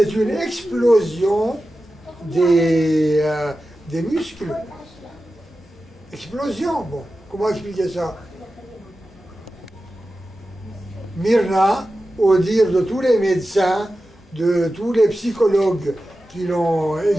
une explosion des muscles. Explosion, bon, comment expliquer ça? Myrna, au dire de tous les médecins, de tous les psychologues qui l'ont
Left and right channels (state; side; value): normal; both; correlation 0.93